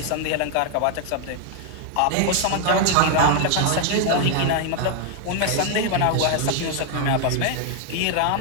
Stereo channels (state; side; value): different; both; correlation 0.00